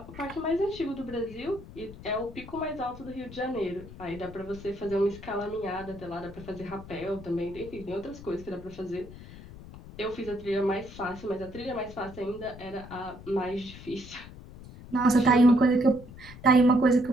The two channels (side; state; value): left; noise; rumble, 16 dB below the sound